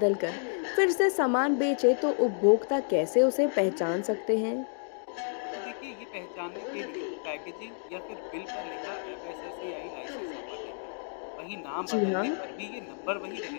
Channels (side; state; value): right; silent; digital silence